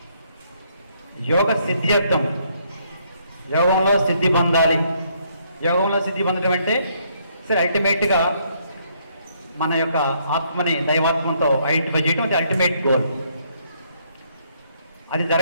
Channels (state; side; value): inverted; both; correlation -0.70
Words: యోగ సిద్ధ్యర్థం, యోగంలో సిద్ధి పొందాలి. యోగంలో సిద్ధి పొందడం అంటే సరే అల్టిమేట్గా మన యొక్క ఆత్మని దైవాత్మంతో ఐడెంటిఫై చేయడం అది అల్టిమేట్ గోల్. అది